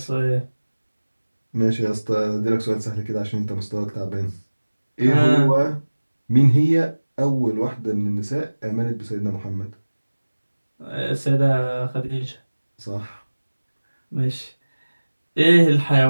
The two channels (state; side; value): inverted; both; correlation -1.00